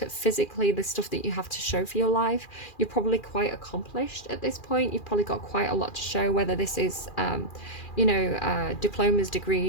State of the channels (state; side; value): late; right; 2.4 ms